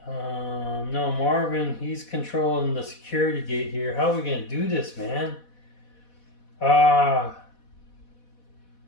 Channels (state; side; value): late; right; 4.1 ms